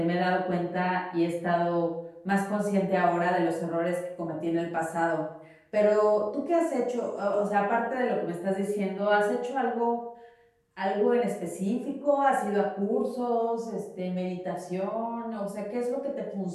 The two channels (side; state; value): both; identical; correlation 1.00